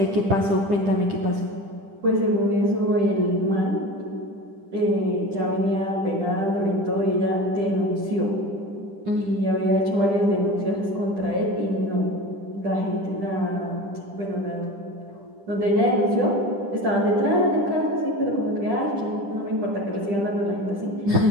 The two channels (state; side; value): late; left; 10 ms